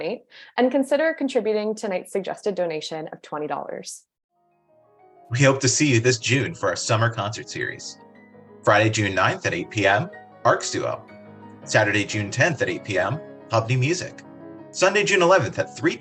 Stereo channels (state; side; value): identical; both; correlation 1.00